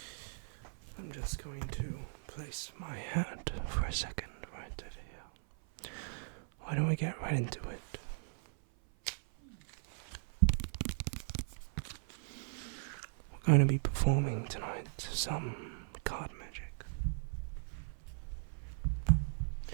I'm just going to place my hat for a second right over here. Why don't we get right into it? We're going to be performing tonight some card magic.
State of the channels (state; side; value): silent; left; 52 dB below the other